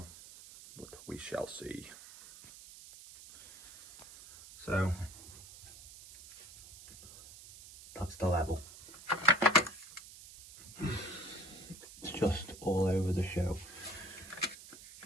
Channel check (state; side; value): noise; right; hiss, 17 dB below the sound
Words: but we shall see. So that's the level. It's just all over the show.